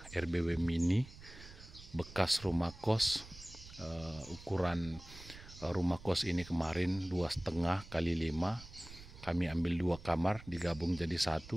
RBW mini bekas rumah kos. Ukuran rumah kos ini kemarin 2,5 x 5. Kami ambil 2 kamar digabung jadi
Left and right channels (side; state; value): right; noise; rumble, 17 dB below the sound